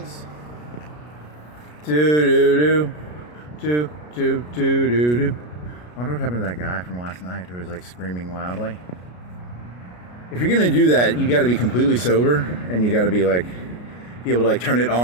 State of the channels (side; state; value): right; late; 33 ms